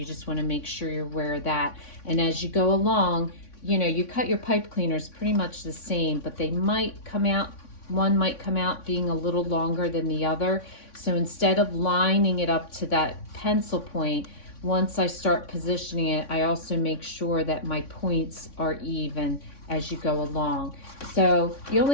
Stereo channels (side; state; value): right; late; 3.6 ms